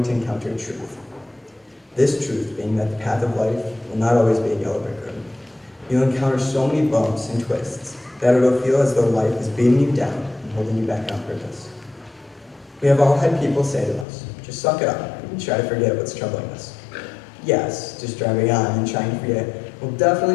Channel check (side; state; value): right; drops out; at 14.1 s